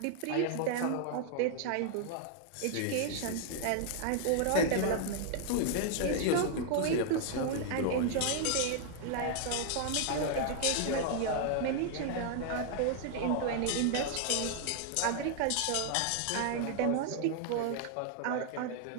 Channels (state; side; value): different; both; correlation 0.00